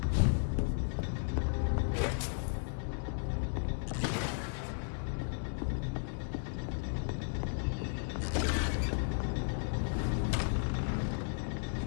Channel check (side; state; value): right; silent; digital silence